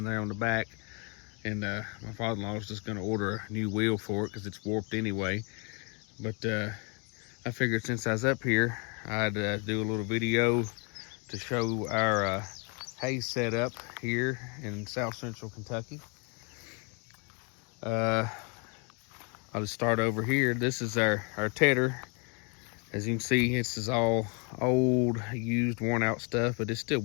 there on the back. And my father-in-law is just gonna order a new wheel for it because it's warped anyway. But I figured since I was up here, I'd do a little video to show our hay setup here in South Central Kentucky. I'll just start over here. This is our tedder. As you can see, this is all old, used, worn out stuff, but it still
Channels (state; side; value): quieter; right; 35.0 dB